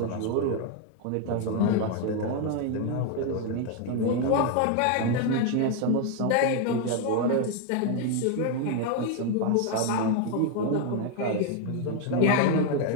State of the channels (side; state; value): both; different; correlation 0.01